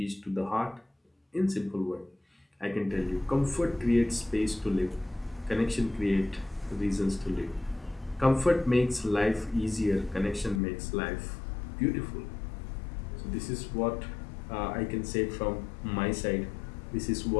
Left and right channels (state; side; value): drops out; right; at 10.6 s